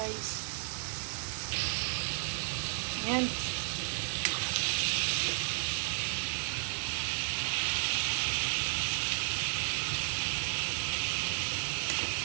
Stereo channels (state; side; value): silent; left; digital silence